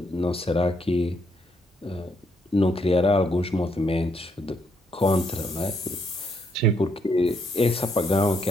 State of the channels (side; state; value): both; normal; correlation 0.74